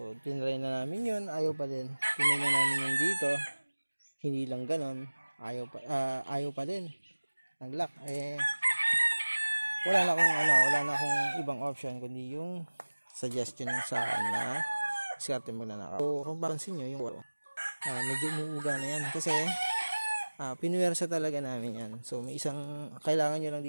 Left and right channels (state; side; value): inverted; both; correlation -1.00